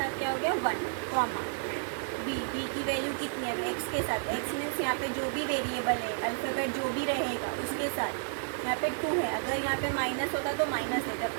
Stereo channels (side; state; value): left; silent; 56 dB below the other